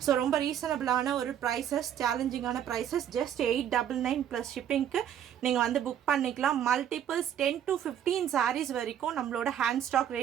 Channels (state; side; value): quieter; left; 9.8 dB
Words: ஸோ ரொம்ப ரீசனபிளான ஒரு ப்ரைஸஸ், சேலஞ்சிங்கான ப்ரைஸஸ். ஜஸ்ட் 899 ப்ளஸ் ஷிப்பிங்க்கு நீங்கள் வந்து புக் பண்ணிக்கலாம். மல்டிபிள்ஸ் 10 to 15 சாரீஸ் வரைக்கும் நம்மளோட ஹேண்ட் ஸ்டாக்